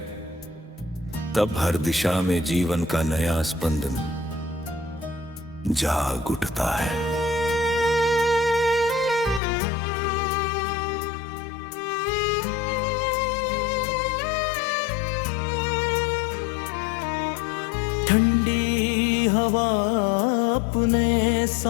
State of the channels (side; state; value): right; drops out; at 9.4 s